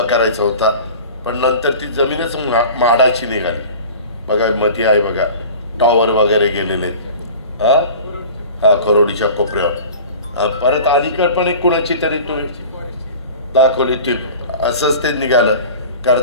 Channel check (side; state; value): both; inverted; correlation -0.39